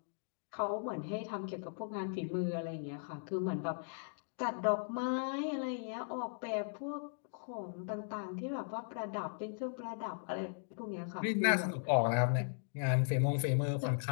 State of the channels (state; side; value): silent; right; digital silence